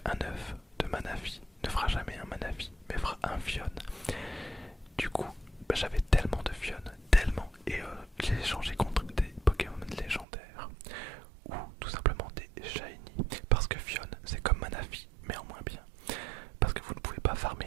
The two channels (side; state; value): left; drops out; at 10.2 s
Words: œuf de Manaphy ne fera jamais un Manaphy, mais fera un Fion. Du coup, j'avais tellement